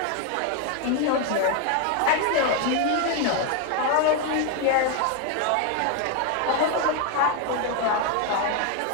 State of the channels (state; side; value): different; both; correlation 0.01